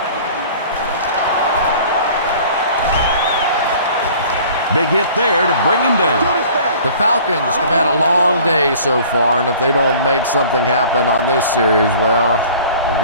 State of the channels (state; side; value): inverted; both; correlation -0.48